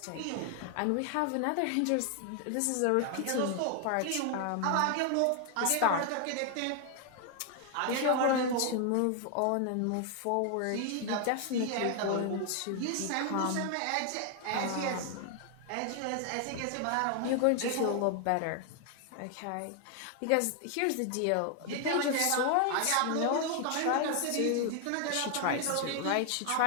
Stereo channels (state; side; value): different; both; correlation 0.00